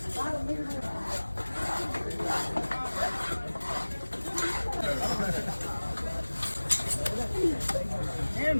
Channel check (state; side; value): inverted; both; correlation -1.00